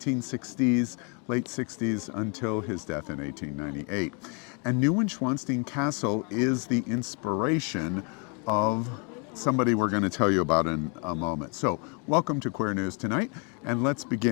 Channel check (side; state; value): right; quieter; 35.9 dB